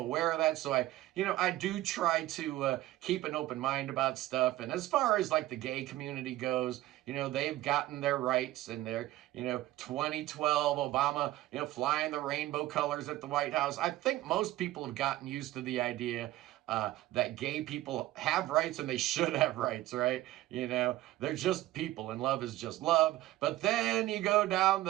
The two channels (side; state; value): left; quieter; 15.9 dB